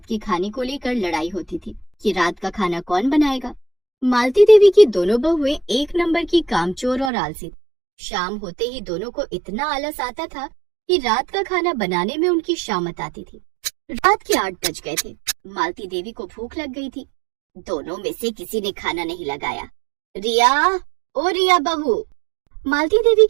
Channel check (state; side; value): drops out; left; at 7.1 s